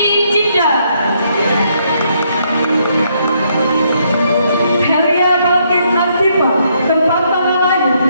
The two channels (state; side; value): inverted; both; correlation -0.73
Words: Cinta. Helia Balkis Asifa, tempat tanggal lahir